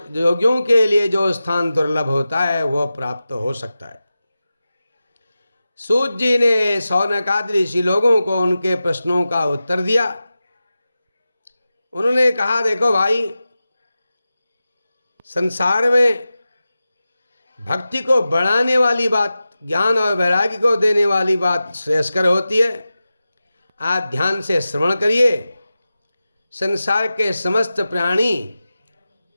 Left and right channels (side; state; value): both; inverted; correlation -0.94